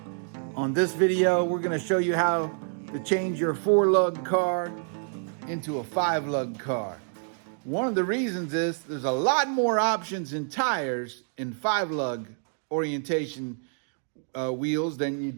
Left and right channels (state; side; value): silent; left; 60 dB below the other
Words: On this video, we're going to show you how to change your 4-lug car into a 5-lug car. One of the reasons is there's a lot more options in tires in 5-lug orientation wheels than you